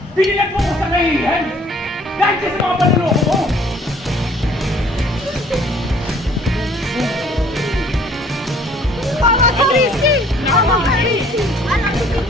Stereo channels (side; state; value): both; normal; correlation 0.56